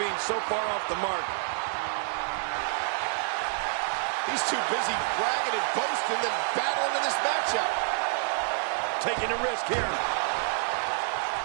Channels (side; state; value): left; silent; 59 dB below the other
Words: so far off the mark. He's too busy bragging and boasting than battling in this matchup. Taking a risk here.